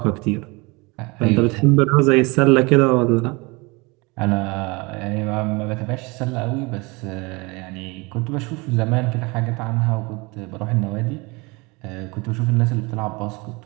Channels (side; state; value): left; quieter; 26.4 dB